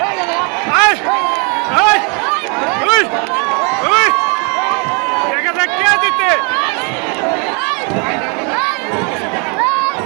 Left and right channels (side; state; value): left; quieter; 34.9 dB